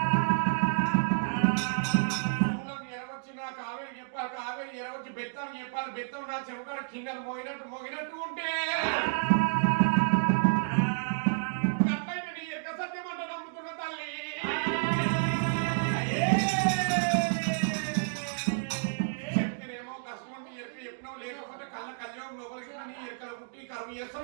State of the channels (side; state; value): left; silent; digital silence